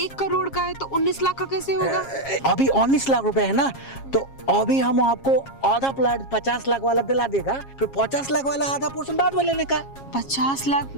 करोड़ का है, तो 19 लाख का कैसे होगा? अभी 19 लाख रुपए है ना, तो अभी हम आपको आधा प्लॉट 50 लाख वाला दिला देगा, फिर 50 लाख वाला आधा पोर्शन बाद में लेने का। 50 लाख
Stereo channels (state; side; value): late; right; 7.4 ms